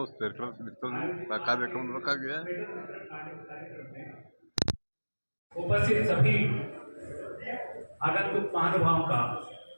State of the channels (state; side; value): inverted; both; correlation -1.00